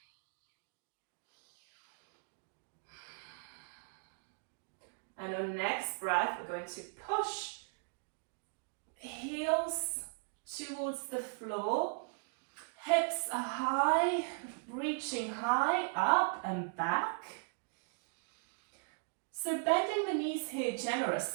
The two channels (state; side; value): quieter; left; 38.8 dB